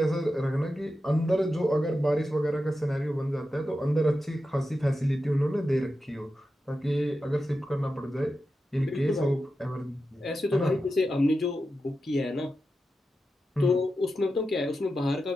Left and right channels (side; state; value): both; normal; correlation 0.90